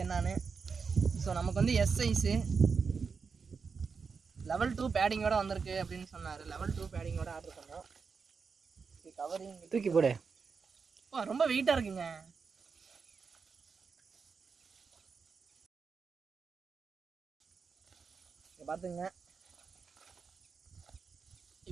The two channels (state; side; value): quieter; left; 5.4 dB